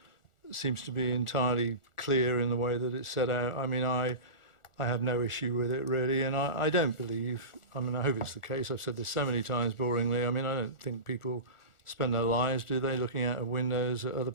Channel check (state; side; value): late; right; 1.4 ms